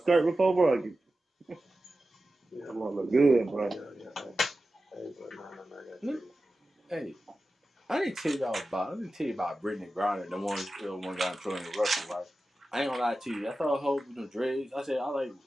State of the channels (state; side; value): normal; both; correlation 0.94